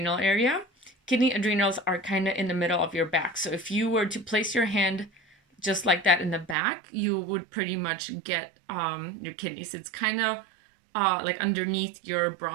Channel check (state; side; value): drops out; left; at 6.6 s